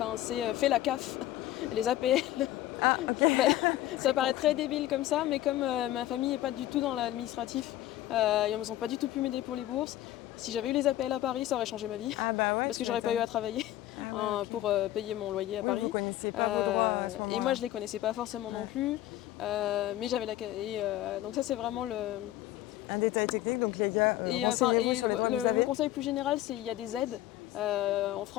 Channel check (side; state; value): right; quieter; 14.3 dB